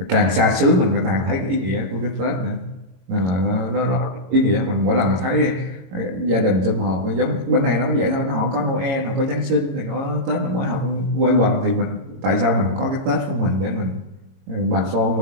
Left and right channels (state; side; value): late; left; 22 ms